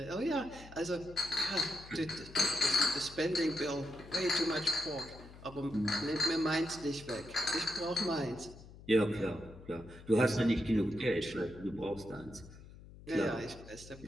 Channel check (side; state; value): left; noise; hum, 18 dB below the sound